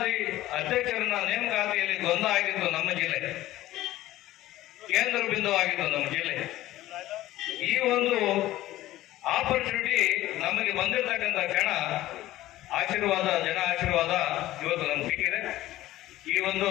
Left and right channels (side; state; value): right; quieter; 15.5 dB